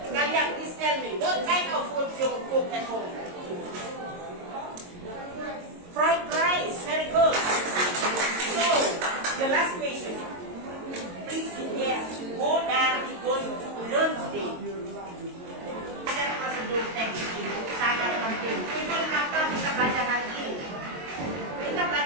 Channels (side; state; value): left; late; 22 ms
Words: Kalian please tell me, what kind of food you cook at home? Fried rice, very good. So, the last question. Please guess, what are we going to learn today? Ada prosedur teks ini sangat penting. Itu kenapa kita belajar hari ini. Kita